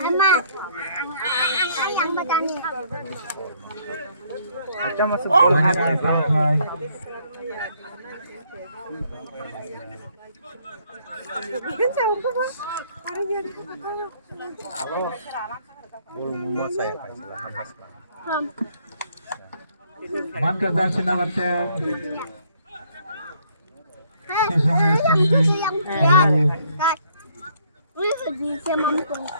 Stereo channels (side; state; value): both; inverted; correlation -0.65